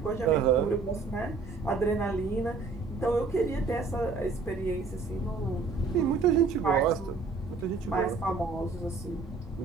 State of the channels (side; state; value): left; quieter; 4.3 dB